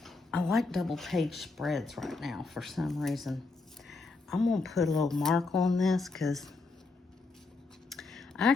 double page spreads right now for some reason. I'm gonna put a little mark on this because I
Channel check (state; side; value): quieter; right; 3.7 dB